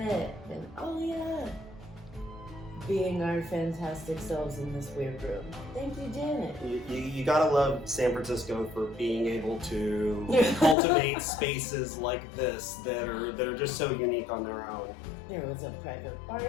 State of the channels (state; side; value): drops out; right; at 10.8 s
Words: and Alia being our fantastic selves in this weird room. Thank you, Janet. You gotta love San Francisco for being able to cultivate spaces like this that are just so unique on their own. There was a private